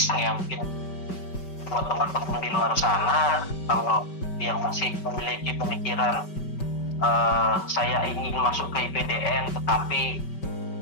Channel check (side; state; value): right; late; 5.2 ms